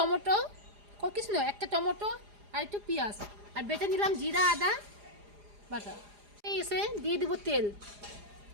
কিছু নয়, একটা টমেটো আর একটু পেঁয়াজ, আর বেটে নিলাম জিরা আদা বাটা। এই এসে দিয়ে দেবো তেল,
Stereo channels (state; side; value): late; left; 4.9 ms